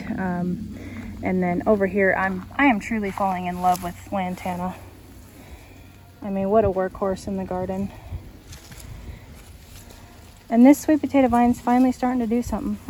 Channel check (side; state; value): both; identical; correlation 1.00